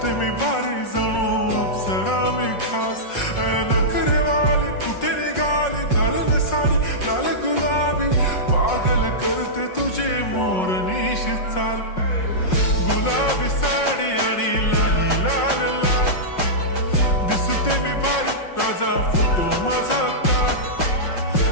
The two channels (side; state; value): right; late; 5.5 ms